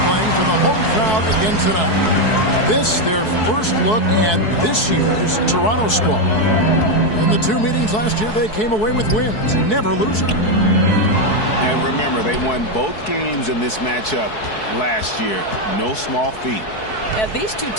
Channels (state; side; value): late; right; 4.6 ms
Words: for the home crowd again tonight. This, their first look at this year's Toronto squad. In the two meetings last year, they came away with wins, never losing. And remember, they won both games in this matchup last year. No small feat. These two